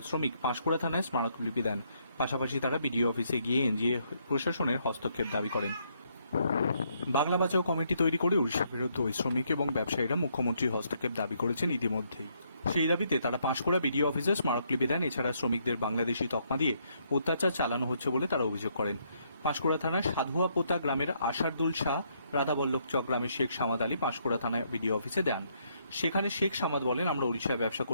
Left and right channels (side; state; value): both; inverted; correlation -0.72